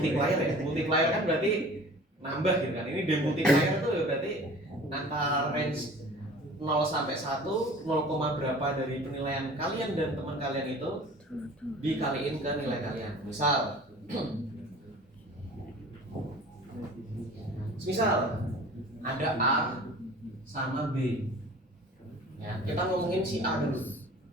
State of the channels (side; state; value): both; normal; correlation 0.44